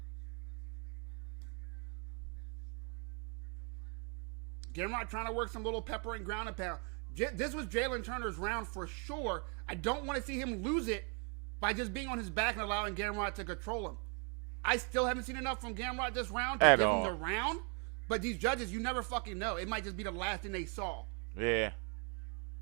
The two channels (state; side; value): quieter; left; 37.3 dB